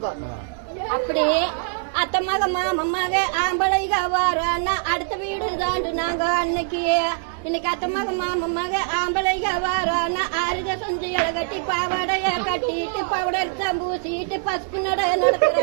அப்படி அத்தை மக மாமமாக ஆம்பளைக வாரானா அடுத்த வீடு தாண்டு நாங்க அன்னைக்கு. இன்னைக்கு அத்தை மக மாமமாக ஆம்பளைக வாரானா ஆறுக சொஞ்சிகளை கட்டி பாவாடைய கட்டிட்டு பவுடர் பூசிட்டு பசுப்பு நட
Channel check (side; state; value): left; silent; digital silence